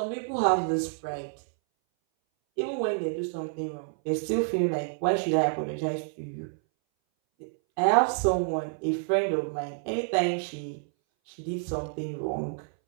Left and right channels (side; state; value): left; silent; 59 dB below the other